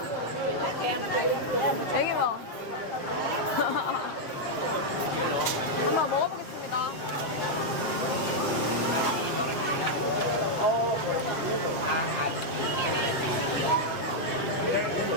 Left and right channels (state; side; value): late; right; 7.5 ms